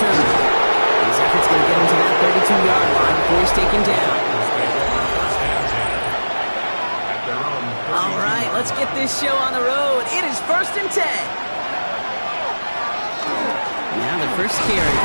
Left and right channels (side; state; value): both; inverted; correlation -1.00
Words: His effort's going to get him to that 32-yard line before he's taken down. All right, let's get this show on the road. It is 1st and 10. Now the first carry